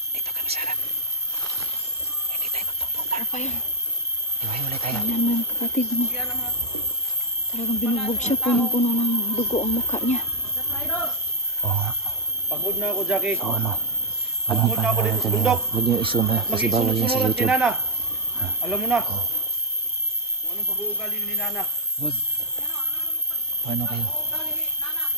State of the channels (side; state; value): both; normal; correlation -0.05